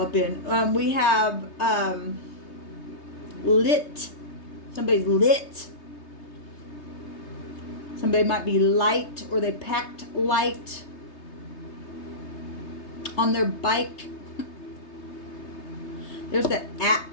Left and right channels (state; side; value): late; right; 3.2 ms